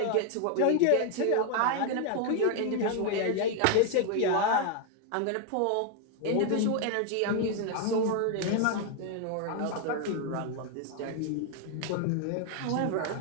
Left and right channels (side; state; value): both; different; correlation 0.01